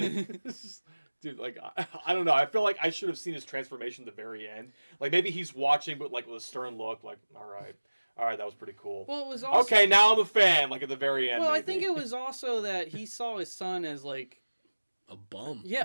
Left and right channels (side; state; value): both; inverted; correlation -1.00